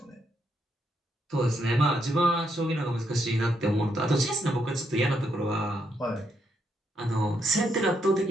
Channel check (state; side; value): normal; both; correlation 0.77